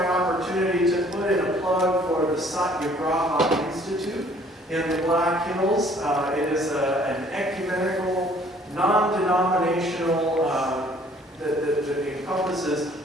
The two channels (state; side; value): normal; both; correlation 0.57